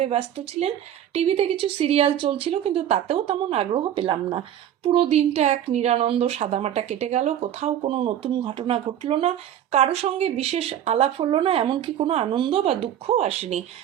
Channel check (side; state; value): left; quieter; 10.7 dB